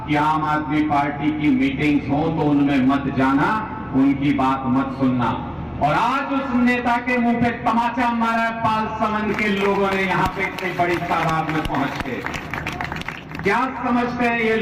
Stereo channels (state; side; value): identical; both; correlation 1.00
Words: कि आम आदमी पार्टी की मीटिंग्स हो तो उनमें मत जाना, उनकी बात मत सुनना। और आज उस नेता के मुंह पे तमाचा मारा पाल समन के लोगों ने यहां पे इतनी बड़ी तादाद में पहुंच के। क्या समझते हैं ये